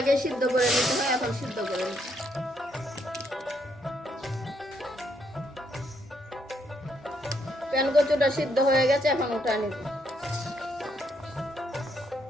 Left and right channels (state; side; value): normal; both; correlation 0.74